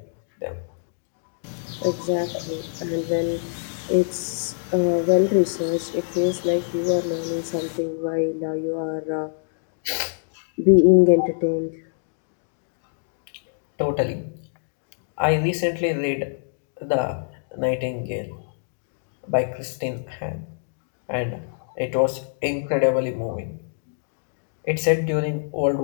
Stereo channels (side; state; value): right; silent; digital silence